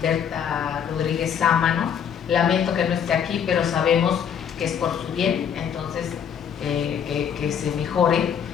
Berta Rodríguez Sámano. Lamento que no esté aquí, pero sabemos que es por su bien, entonces que se mejore.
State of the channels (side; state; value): right; quieter; 8.1 dB